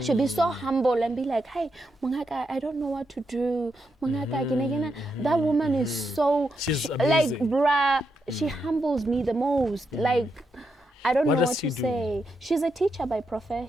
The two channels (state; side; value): normal; both; correlation 0.83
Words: She'll be so humble and be like, hey, Mungaka, I don't know what to do. Mungaka, that woman is so, like, bruh, she humbles me the most. Like, I don't know what to say. She's a teacher by